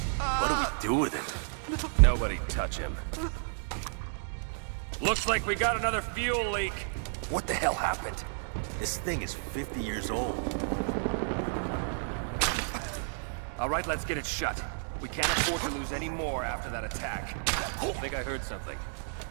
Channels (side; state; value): left; silent; digital silence